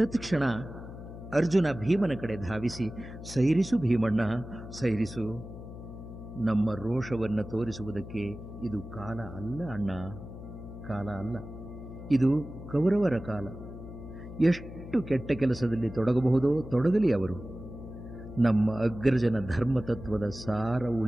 ಅರ್ಜುನ ಭೀಮನ ಕಡೆ ಧಾವಿಸಿ, ಸೈರಿಸು ಭೀಮಣ್ಣ, ಸೈರಿಸು. ನಮ್ಮ ರೋಷವನ್ನು ತೋರಿಸುವುದಕ್ಕೆ ಇದು ಕಾಲ ಅಲ್ಲ ಅಣ್ಣ, ಕಾಲ ಅಲ್ಲ. ಇದು ಕೌರವರ ಕಾಲ. ಎಷ್ಟು ಕೆಟ್ಟ ಕೆಲಸದಲ್ಲಿ ತೊಡಗಬಹುದೋ ತೊಡಗಲಿ ಅವರು. ನಮ್ಮ ಅಗ್ರಜನ ಧರ್ಮತತ್ವದ ಸಾರ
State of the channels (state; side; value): noise; left; hum, 12 dB below the sound